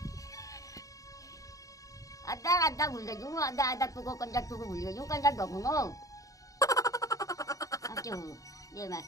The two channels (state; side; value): late; right; 0.16 ms